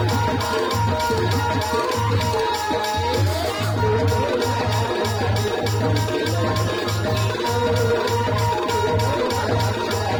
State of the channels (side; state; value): both; identical; correlation 1.00